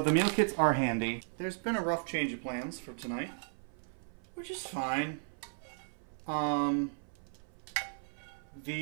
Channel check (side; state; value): left; silent; 54 dB below the other